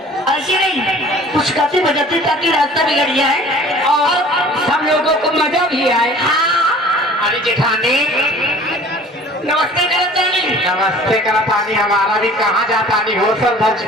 ऐसी नहीं, कुछ गाते बजाते ताकि रास्ता बिगड़ जाए और हम लोगों को मजा भी आए। हाँ। अरे जेठानी नमस्ते करतानी। नमस्ते करतानी। हमारा भी कहाँ जाता नहीं हो सर धज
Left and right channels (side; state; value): both; normal; correlation 0.47